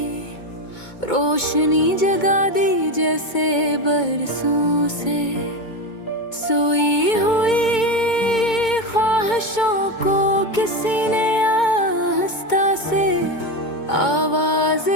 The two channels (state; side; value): late; right; 2.2 ms